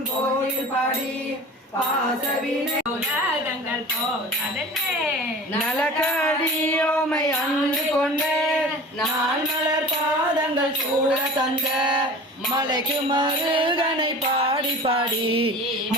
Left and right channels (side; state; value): both; normal; correlation 0.39